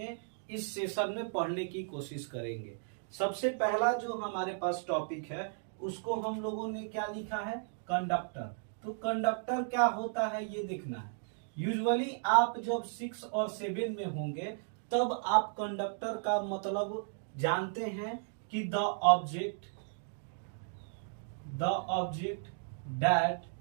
इस सेशन में पढ़ने की कोशिश करेंगे। सबसे पहला जो हमारे पास टॉपिक है उसको हम लोगों ने क्या लिखा है, कंडक्टर। तो कंडक्टर क्या होता है ये देखना है। यूजुअली आप जब 6 और 7 में होंगे तब आप कंडक्टर का मतलब जानते हैं कि the object that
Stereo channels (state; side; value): silent; left; digital silence